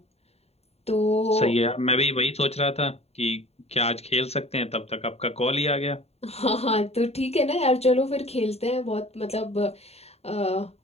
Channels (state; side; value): late; right; 0.30 ms